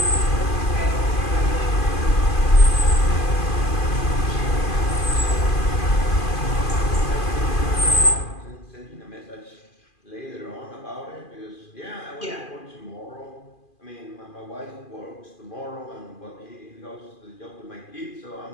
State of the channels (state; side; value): late; right; 2.5 ms